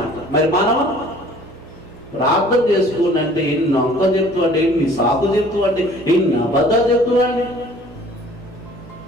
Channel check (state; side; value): noise; right; hum, 21 dB below the sound